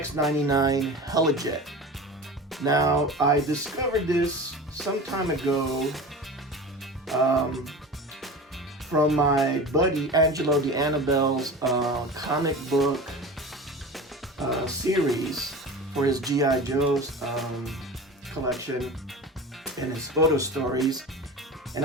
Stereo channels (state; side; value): normal; both; correlation 0.33